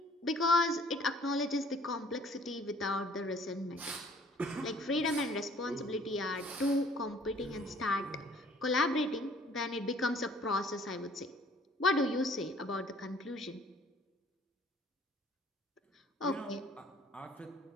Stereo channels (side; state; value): both; normal; correlation 0.56